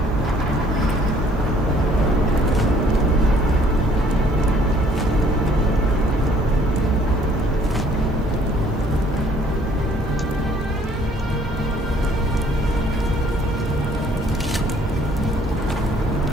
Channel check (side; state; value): both; normal; correlation 0.60